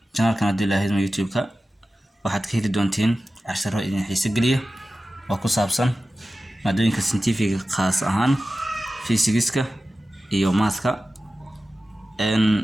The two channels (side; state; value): both; normal; correlation 0.94